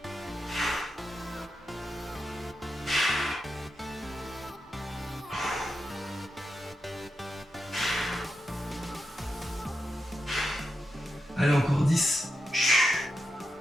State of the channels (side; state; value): both; normal; correlation 0.87